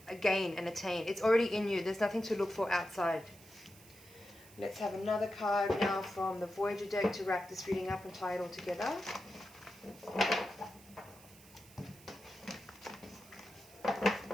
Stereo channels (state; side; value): noise; right; hiss, 22 dB below the sound